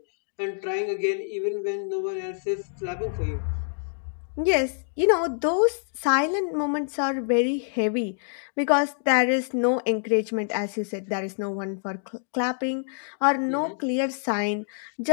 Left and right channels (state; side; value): silent; right; digital silence